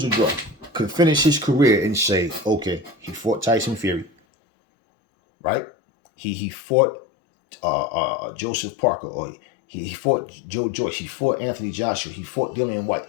or draw, could finish his career and say, okay, he fought Tyson Fury, right? He fought Joseph Parker, or he fought Joe Joyce, he fought Anthony Joshua, he fought Dillian White.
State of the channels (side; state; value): right; drops out; at 4.1 s